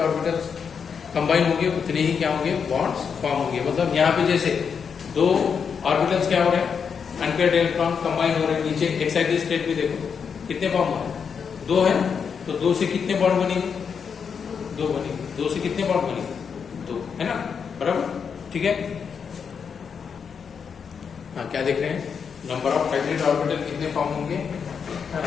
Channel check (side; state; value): right; quieter; 6.5 dB